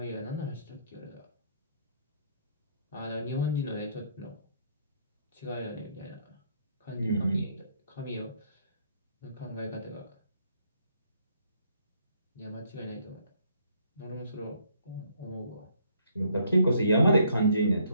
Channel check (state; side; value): inverted; both; correlation -0.67